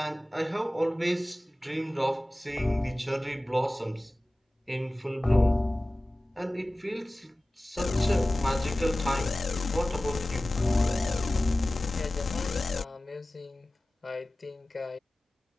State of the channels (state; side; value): normal; both; correlation 0.97